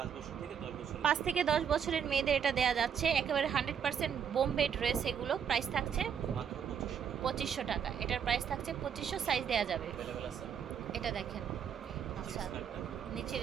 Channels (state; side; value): quieter; left; 7.8 dB